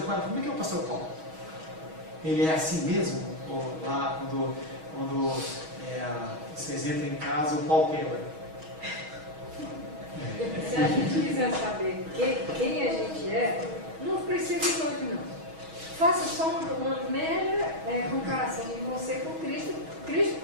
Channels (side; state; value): left; late; 6.3 ms